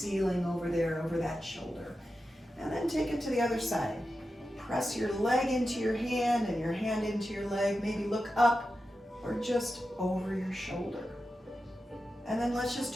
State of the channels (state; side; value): normal; both; correlation 0.91